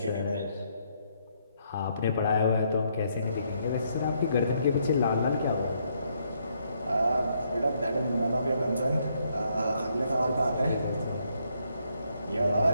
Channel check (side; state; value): both; inverted; correlation -0.74